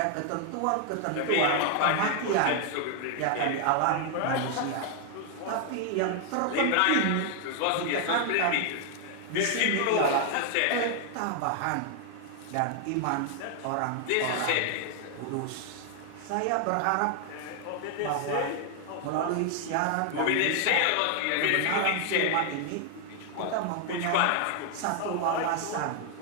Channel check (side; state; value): both; different; correlation 0.00